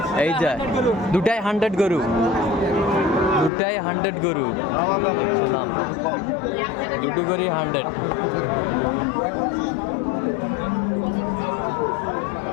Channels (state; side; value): drops out; right; at 3.5 s